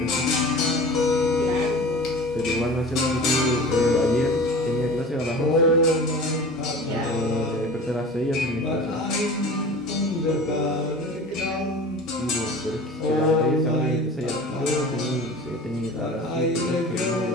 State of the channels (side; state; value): both; normal; correlation 0.38